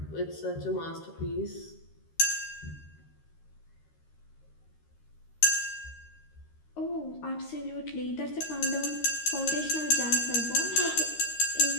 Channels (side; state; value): right; late; 13 ms